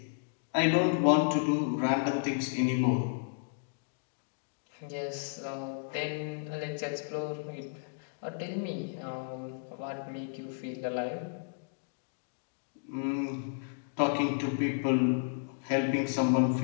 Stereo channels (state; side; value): silent; right; digital silence